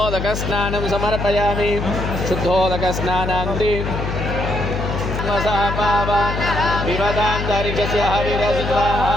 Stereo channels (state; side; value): noise; left; hum, 4 dB below the sound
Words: समर्पयामि शुद्धोदकस्नानान्ते विवदान्तरिक्षस्य हविरस्वा